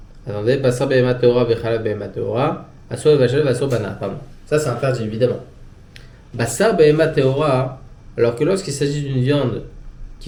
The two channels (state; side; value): identical; both; correlation 1.00